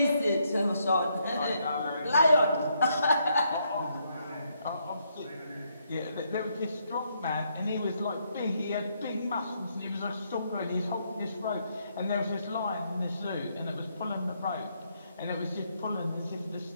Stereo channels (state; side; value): inverted; both; correlation -0.75